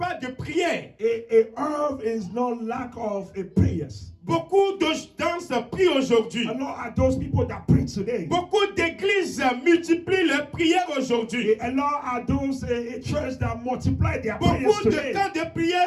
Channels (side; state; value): both; identical; correlation 1.00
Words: de prière. Earth is not lack of prayers. Beaucoup de gens prient aujourd'hui. A lot are those people that pray today. Beaucoup d'églises multiplient leurs prières aujourd'hui. A lot are those churches that multiply their prayers Beaucoup de today. camps de prière